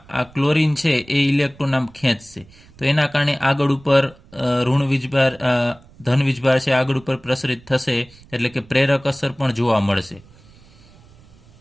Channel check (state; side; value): noise; right; rumble, 26 dB below the sound